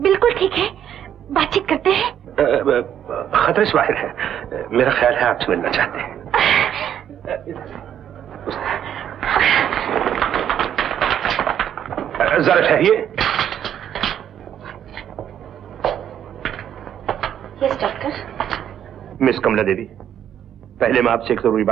बिल्कुल ठीक है, बातचीत करते हैं। खतरे से बाहर है, मेरा ख्याल है आपसे मिलना चाहते हैं। जरा ठहरिए। Yes doctor. Miss Kamla Devi, पहले मैं आपसे एक जरूरी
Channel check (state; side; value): quieter; left; 9.8 dB